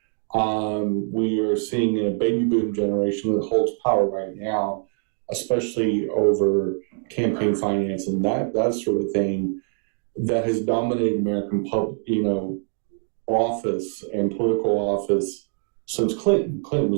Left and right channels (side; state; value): left; silent; 59 dB below the other